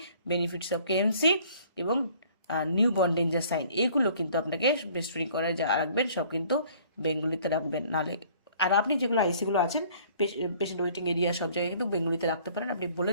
benefits of KMC এবং newborn danger sign, এগুলো কিন্তু আপনাকে breast feeding করার যা রাখবেন সব কিন্তু বেঙ্গলিতে রাখবেন, নাহলে। আর আপনি যেগুলো আইসিগুলো আছেন, পেশেন্ট ওয়েটিং এরিয়া, সব জায়গায় কিন্তু বেঙ্গলিতে রাখতে পারেন, আপনি বলে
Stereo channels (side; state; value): both; inverted; correlation -0.56